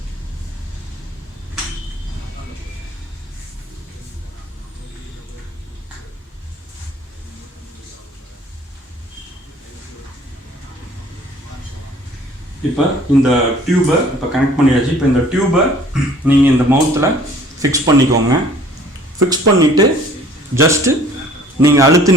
இப்போ இந்த டியூபை இப்போ கனெக்ட் பண்ணியாச்சு. இப்போ இந்த டியூபை நீங்கள் இந்த மவுத்தில் ஃபிக்ஸ் பண்ணிக்கோங்க. ஃபிக்ஸ் பண்ணிவிட்டு ஜஸ்ட்டு நீங்கள்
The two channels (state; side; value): normal; both; correlation 0.53